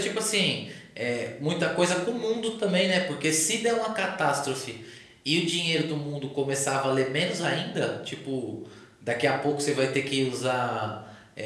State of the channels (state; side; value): identical; both; correlation 1.00